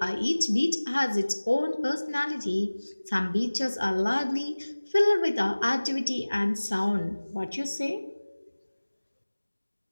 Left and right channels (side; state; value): both; inverted; correlation -1.00